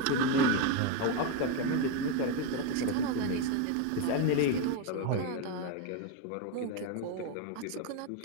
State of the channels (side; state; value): both; different; correlation 0.03